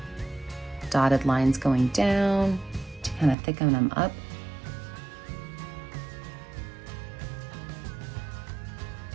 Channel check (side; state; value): left; drops out; at 3.4 s